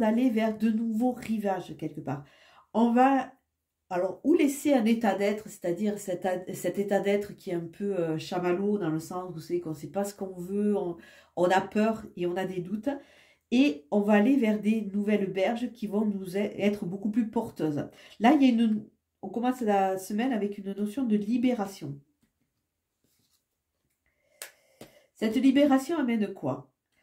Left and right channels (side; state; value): both; identical; correlation 1.00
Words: vers de nouveaux rivages, quelque part. On va, alors, ou laisser un état d'être, c'est-à-dire cet état d'être qui est un peu chamallow, dans le sens où c'est qu'on ne sait pas ce qu'on veut, on a peur et on a des doutes. Et on va aller vers des nouvelles berges qui vont nous être beaucoup plus porteuses. Là, on commence la semaine avec une notion de libération. Cette libération amène quoi?